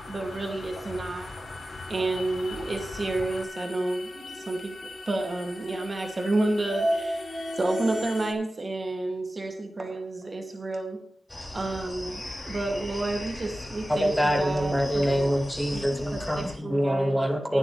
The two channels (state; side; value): normal; both; correlation 0.95